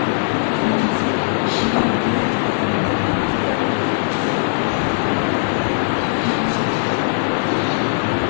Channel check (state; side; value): silent; right; digital silence